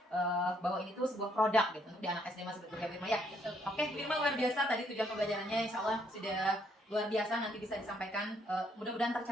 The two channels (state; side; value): normal; both; correlation 0.70